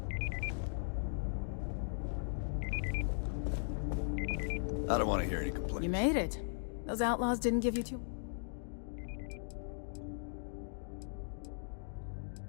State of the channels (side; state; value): right; silent; digital silence